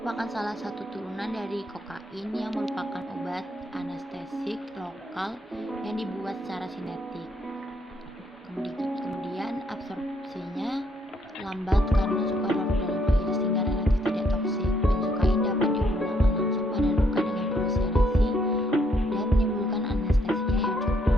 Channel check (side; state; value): both; normal; correlation 0.71